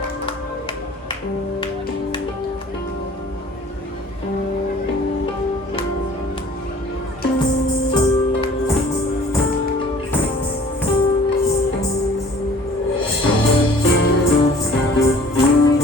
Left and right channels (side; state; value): both; normal; correlation 0.50